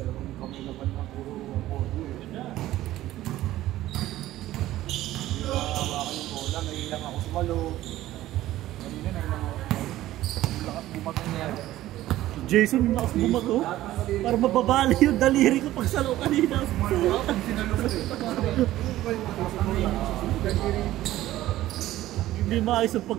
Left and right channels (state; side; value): quieter; left; 14.9 dB